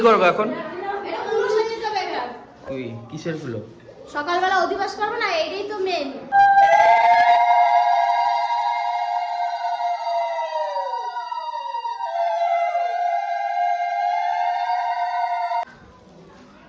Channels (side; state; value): both; identical; correlation 1.00